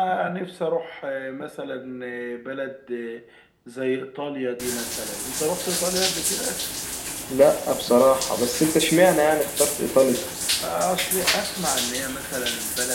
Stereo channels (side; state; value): both; identical; correlation 1.00